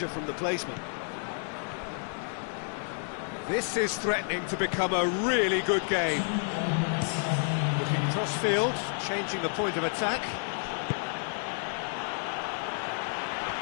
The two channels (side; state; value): right; silent; 56 dB below the other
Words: from the placement. This is threatening to become a really good game. Looking cross-field, changing the point of attack.